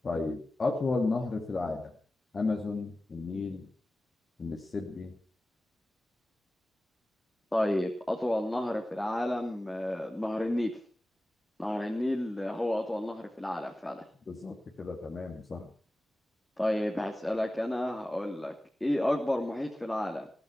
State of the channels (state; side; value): normal; both; correlation 0.96